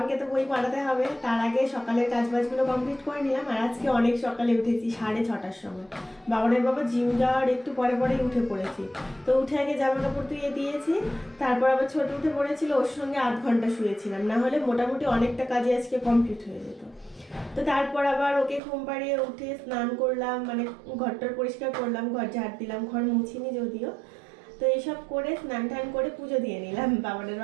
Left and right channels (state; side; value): drops out; left; at 18.6 s